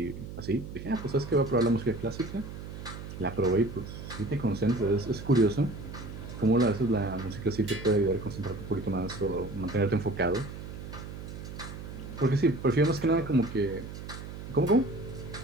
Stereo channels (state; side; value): noise; right; hum, 10 dB below the sound